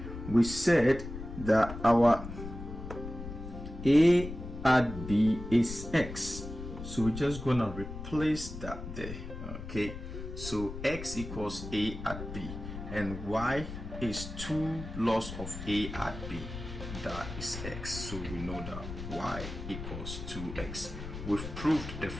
we said that our a at b is x, so we're just gonna replace that there. Okay, so x equals a at b and y is 2 loss of a at b, that is x, so we know that y equals 2x. We've proved the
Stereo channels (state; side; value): noise; left; rumble, 9 dB below the sound